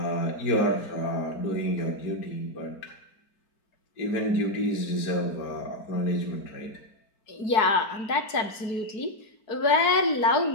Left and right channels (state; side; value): late; right; 4.7 ms